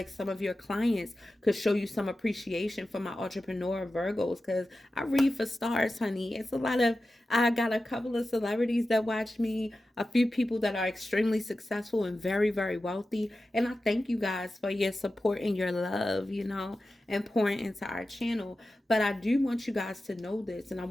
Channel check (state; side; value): normal; both; correlation 0.93